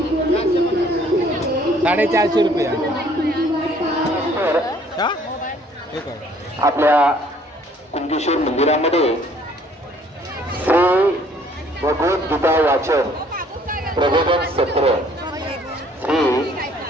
450 रुपये. आपल्या कुणकेश्वर मंदिरामध्ये श्री भगवद्गीता वाचन प्रबोधन सत्र श्री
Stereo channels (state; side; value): normal; both; correlation 0.59